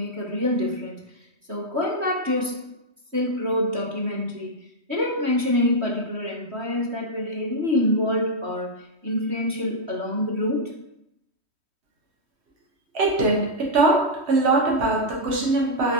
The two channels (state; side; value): late; left; 3.1 ms